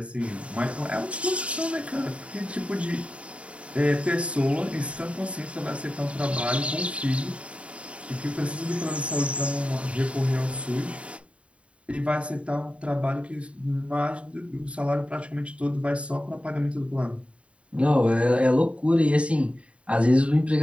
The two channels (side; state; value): left; late; 0.062 ms